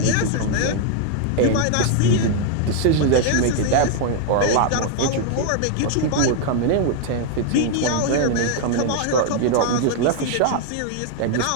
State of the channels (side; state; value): both; different; correlation 0.00